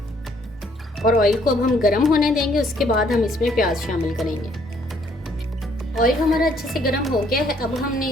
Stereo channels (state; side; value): normal; both; correlation 0.65